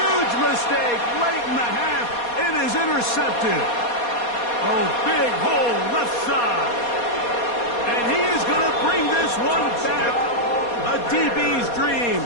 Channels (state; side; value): late; right; 4.2 ms